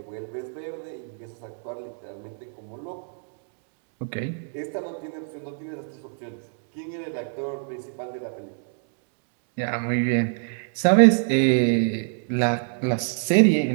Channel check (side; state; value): left; silent; digital silence